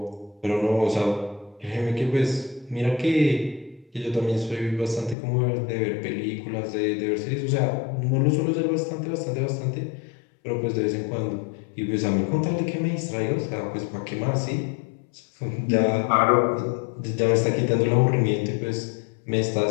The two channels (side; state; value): right; drops out; at 5.2 s